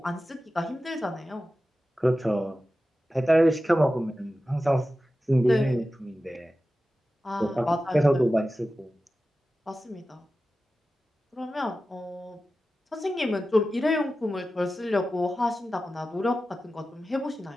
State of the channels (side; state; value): both; normal; correlation 0.94